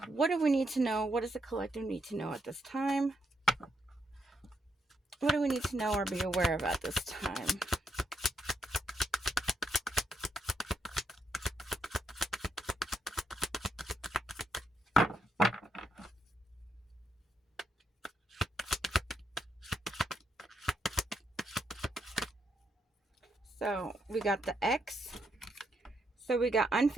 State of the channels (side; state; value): both; normal; correlation 0.78